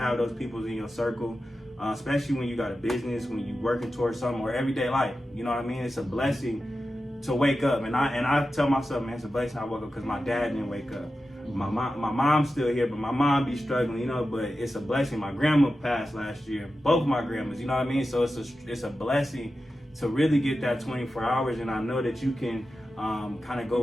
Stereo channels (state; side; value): normal; both; correlation 0.92